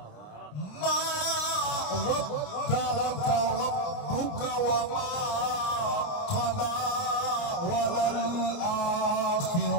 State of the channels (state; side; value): late; right; 29 ms